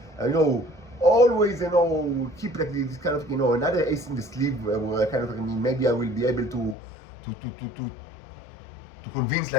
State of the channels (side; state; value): right; drops out; at 6.8 s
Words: always keep like this kind of another ace in the sleeve where I kind of maybe I will be able to convince